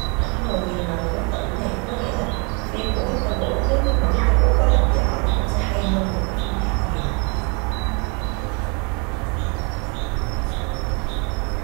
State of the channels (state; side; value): quieter; left; 33.2 dB